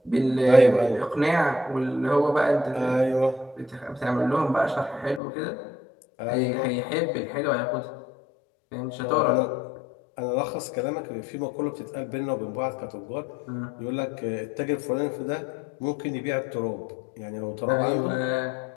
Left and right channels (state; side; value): drops out; right; at 5.2 s